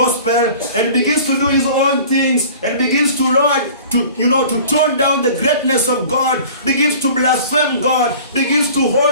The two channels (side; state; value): both; inverted; correlation -0.44